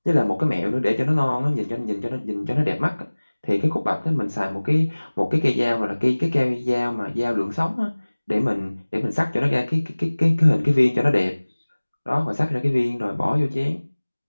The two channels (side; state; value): both; inverted; correlation -1.00